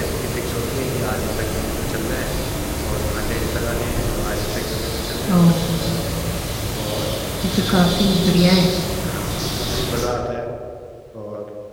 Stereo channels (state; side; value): identical; both; correlation 1.00